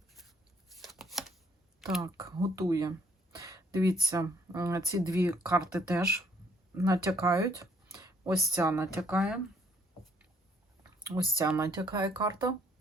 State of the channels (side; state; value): both; normal; correlation 0.65